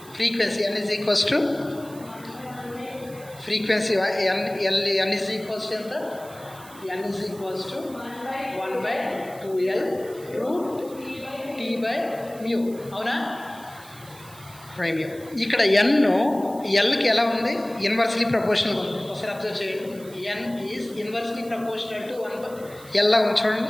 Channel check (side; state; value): right; noise; hiss, 21 dB below the sound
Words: Frequency n is equals to frequency n is equals to ఎంత, n is equals to 1/2L root T by mu. అవునా, బై మ్యూ. ఇక్కడ ఎన్ ఎల్కి ఎలా ఉంది, ఇన్వర్స్లీ ప్రపోర్షనల్గా ఉంది. ఒకసారి అబ్జర్వ్ చేయండి. ఎన్ ఈజ్ ఇన్వర్స్లీ ప్రపోర్షనల్ టు 1/, ఎల్లా ఉంది